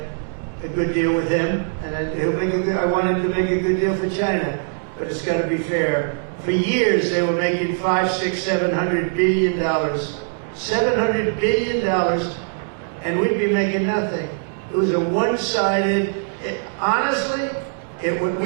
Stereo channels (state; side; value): silent; left; digital silence